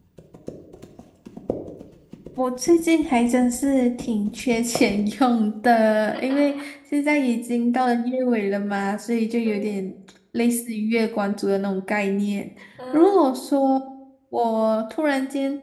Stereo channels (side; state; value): both; identical; correlation 1.00